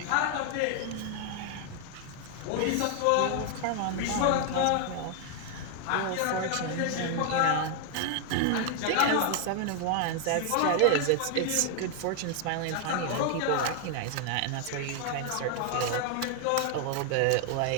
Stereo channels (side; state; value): both; different; correlation 0.00